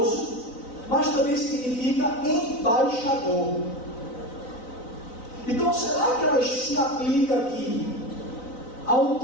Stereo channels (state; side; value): late; right; 3.9 ms